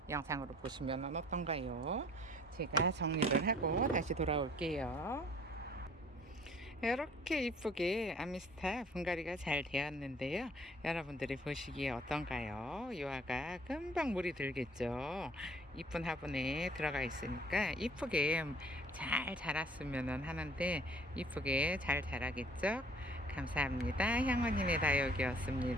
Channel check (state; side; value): normal; both; correlation 0.55